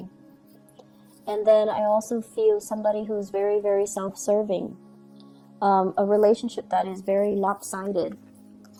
And then I also feel somebody who's very, very self-serving. A relationship that is very lopsided.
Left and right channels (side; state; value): both; identical; correlation 1.00